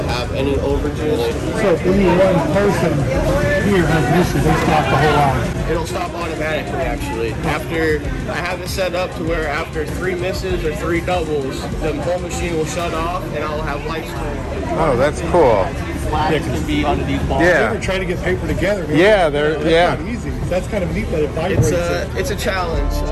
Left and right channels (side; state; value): both; identical; correlation 1.00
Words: have any overages. So if any one person here has an issue, they stop the whole line. It'll stop automatically actually. After I have it set up to where after 3 misses or 3 doubles, the whole machine will shut off and I'll have lights on. Oh, that's cool. Flags can be under these balls. Yeah. We're trying to get paper together. Man. Yeah, That's not easy. That's kind of neat that it vibrates. It's a challenge.